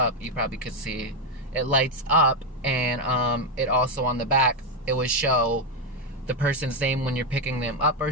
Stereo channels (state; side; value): normal; both; correlation 0.05